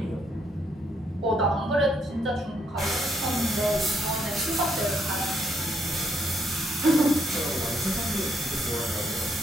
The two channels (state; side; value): normal; both; correlation 0.73